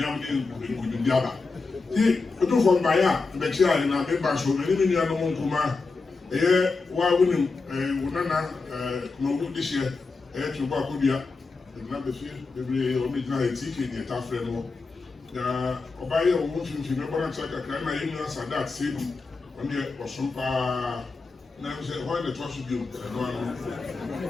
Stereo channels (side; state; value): right; quieter; 4.1 dB